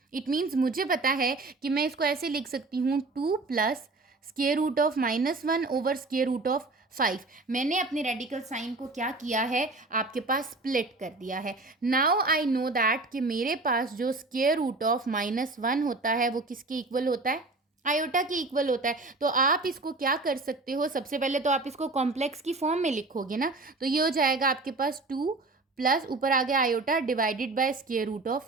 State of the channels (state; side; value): quieter; left; 3.4 dB